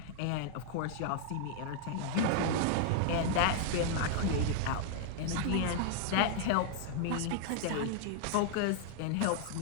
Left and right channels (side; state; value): both; different; correlation 0.00